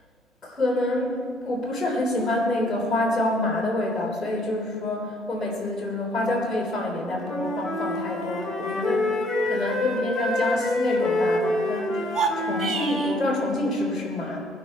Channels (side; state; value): both; normal; correlation 0.63